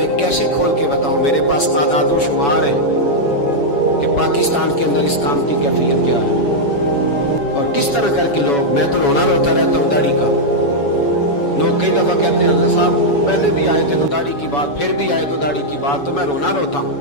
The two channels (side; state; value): right; late; 7.1 ms